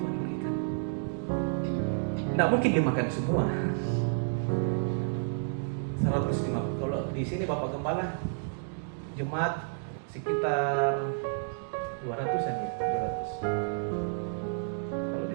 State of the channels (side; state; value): left; silent; digital silence